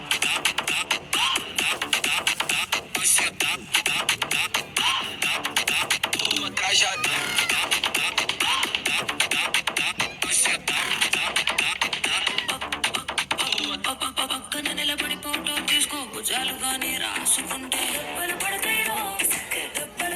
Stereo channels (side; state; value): both; identical; correlation 1.00